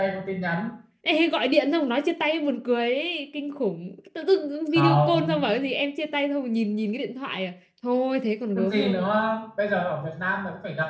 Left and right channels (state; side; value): identical; both; correlation 1.00